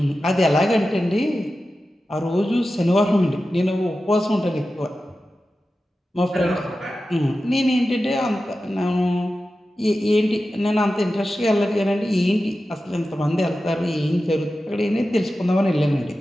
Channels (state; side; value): normal; both; correlation 0.93